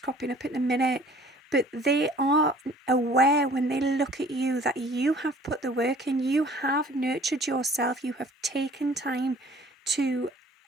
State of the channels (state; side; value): normal; both; correlation 0.52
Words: up in a minute. But they are aware when they look at you that you have put the work in, you have nurtured yourself, you have taken time to